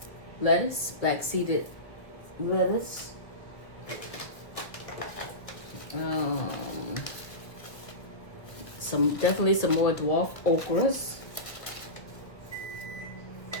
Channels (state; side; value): late; right; 1.2 ms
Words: lettuce, black seeded lettuce. Definitely some more dwarf okras.